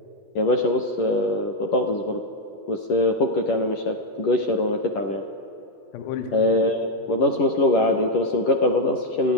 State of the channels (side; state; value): right; late; 11 ms